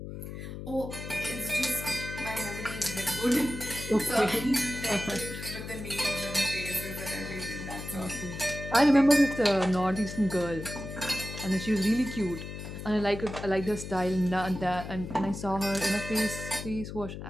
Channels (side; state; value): left; noise; hum, 9 dB below the sound